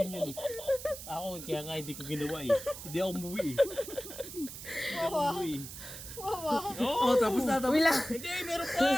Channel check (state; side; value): noise; right; hiss, 11 dB below the sound